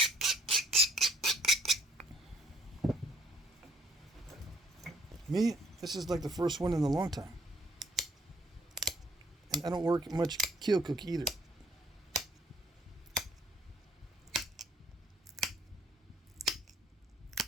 Me, this is like the first one in a long time. And I don't work much keel cook either.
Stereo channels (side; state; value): both; normal; correlation 0.62